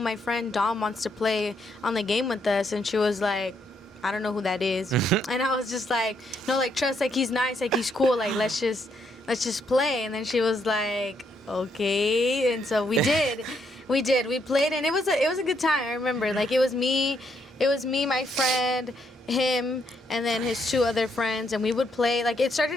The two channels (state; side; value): normal; both; correlation 0.74